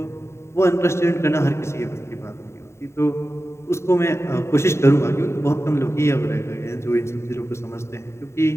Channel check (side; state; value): right; late; 0.13 ms